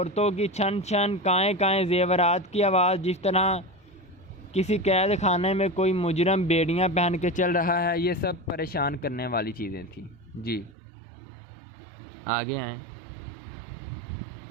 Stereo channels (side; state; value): left; drops out; at 10.8 s